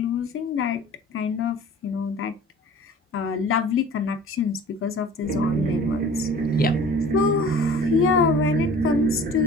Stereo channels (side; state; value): both; normal; correlation 0.45